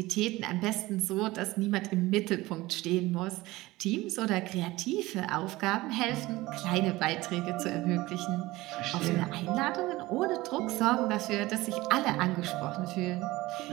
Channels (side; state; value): left; quieter; 19.2 dB